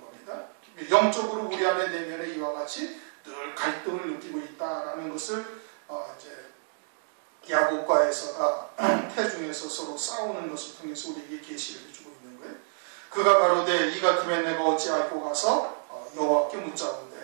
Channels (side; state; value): left; silent; 59 dB below the other